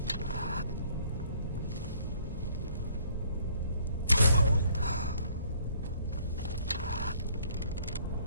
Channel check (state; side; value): inverted; both; correlation -0.61